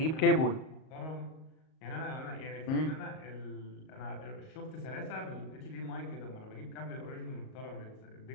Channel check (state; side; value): late; right; 38 ms